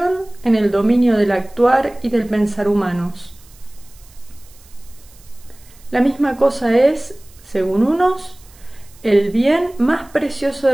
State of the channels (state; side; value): noise; right; hiss, 26 dB below the sound